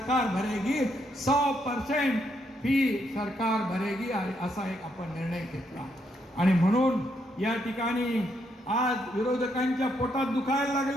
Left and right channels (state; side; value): normal; both; correlation 0.76